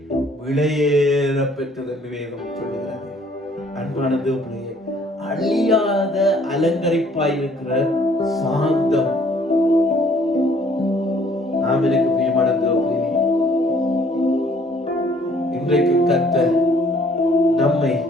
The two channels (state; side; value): normal; both; correlation 0.60